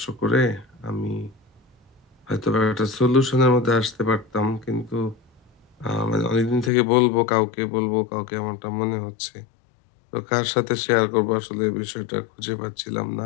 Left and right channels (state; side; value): drops out; right; at 6.7 s